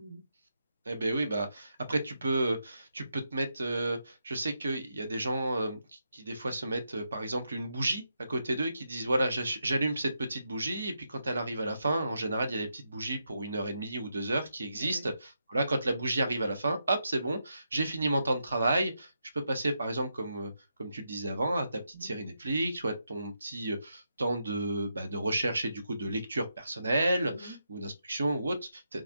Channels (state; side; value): inverted; both; correlation -0.82